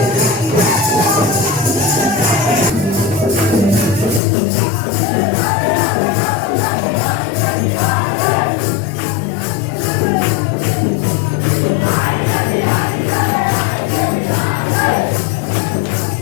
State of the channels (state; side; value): drops out; right; at 4.2 s